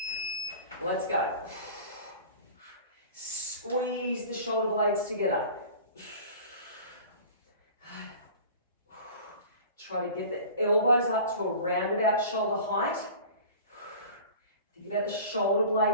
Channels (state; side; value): inverted; both; correlation -0.41